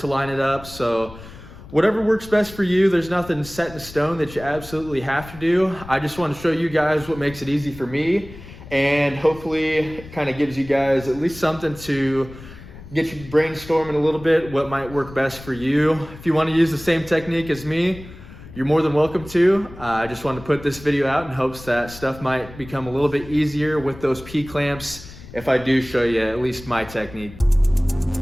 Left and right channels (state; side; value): noise; left; rumble, 17 dB below the sound